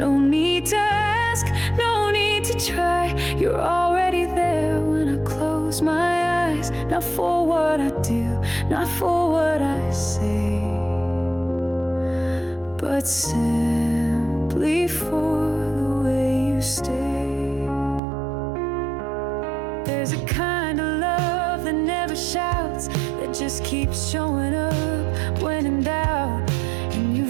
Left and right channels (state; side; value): drops out; left; at 18.0 s